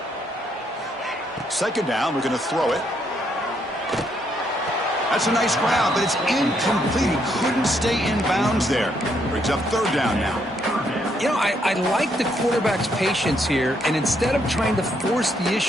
Second down, we're going to throw it. That's a nice grab, but it's incomplete. He couldn't stay in bounds there. Brings up third down now. You know, I like the quarterback's patience here, and instead of trying to force the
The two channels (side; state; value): both; normal; correlation 0.73